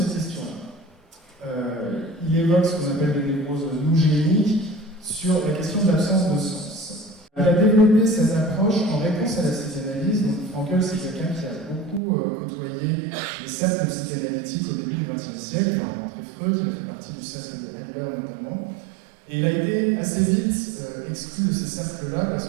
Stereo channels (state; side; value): drops out; left; at 12.0 s